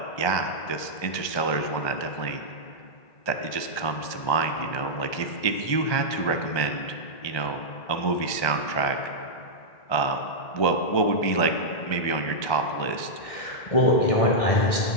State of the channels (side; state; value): right; late; 1.2 ms